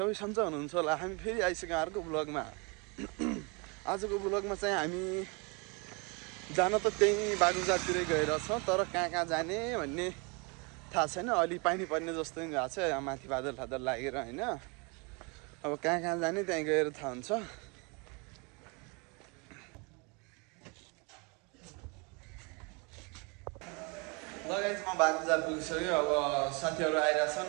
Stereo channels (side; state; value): left; quieter; 30.9 dB